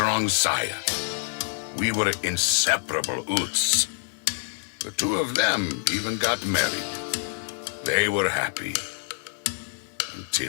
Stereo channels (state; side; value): silent; right; digital silence